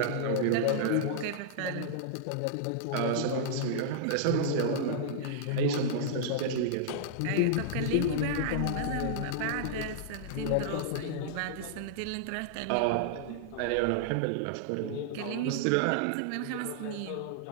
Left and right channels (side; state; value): both; different; correlation -0.01